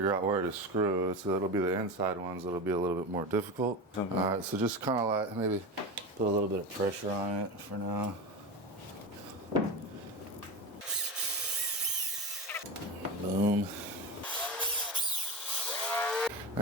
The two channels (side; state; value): both; normal; correlation 0.23